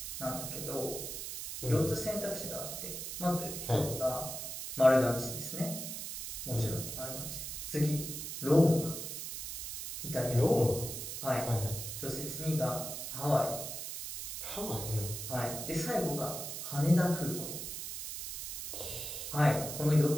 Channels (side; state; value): right; noise; hiss, 6 dB below the sound